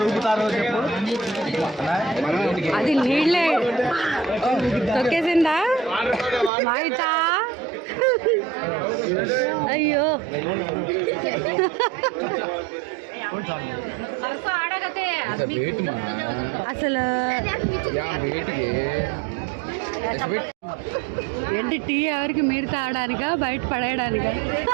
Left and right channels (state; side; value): drops out; left; at 6.5 s